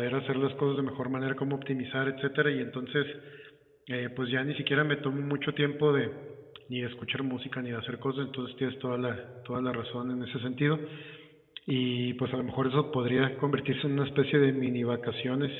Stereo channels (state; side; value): identical; both; correlation 1.00